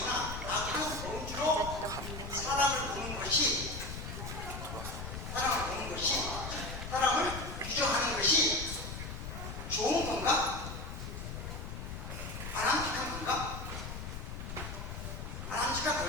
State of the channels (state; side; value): noise; left; rumble, 7 dB below the sound